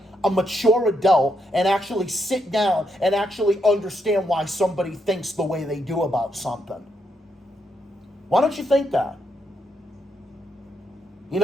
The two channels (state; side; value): normal; both; correlation 0.79